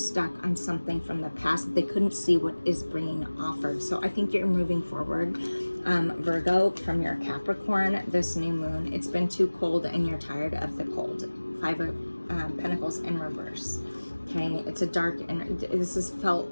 on something from the past that they couldn't see what is being offered. So I think you're moving forward, Virgo, from your Capricorn, this new moon. It's been too cold and you're tired of the cold. Five of Pentacles in reverse. Okay, it's a dark, and this has felt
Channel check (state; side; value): inverted; both; correlation -1.00